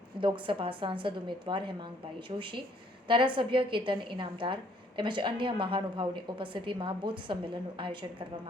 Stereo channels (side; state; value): both; normal; correlation 0.64